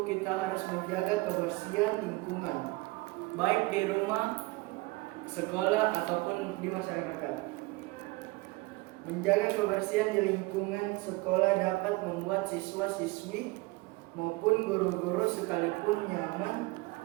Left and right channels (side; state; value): left; quieter; 22.6 dB